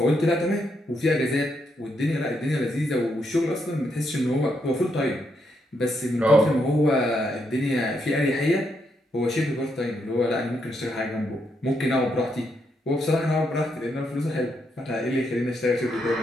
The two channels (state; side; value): normal; both; correlation 0.78